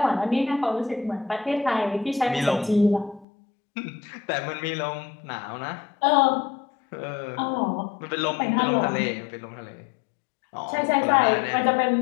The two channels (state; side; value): drops out; right; at 3.2 s